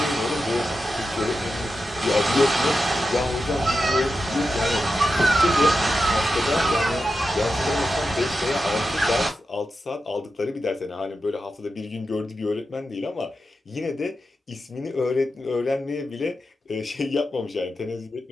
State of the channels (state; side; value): normal; both; correlation 0.89